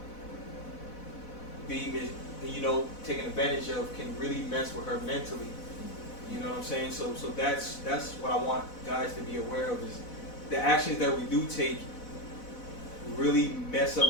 be, you know, taken advantage of, can really mess with her mentally. You know what I'm saying? So that's what I want guys to be aware of, is the actions that we do take really mess up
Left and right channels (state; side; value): late; right; 4.1 ms